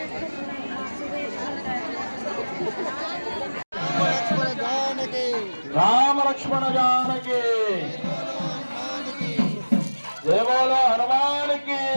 రామ లక్ష్మణ జానకి జయ బోలో హనుమానికి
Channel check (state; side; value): inverted; both; correlation -1.00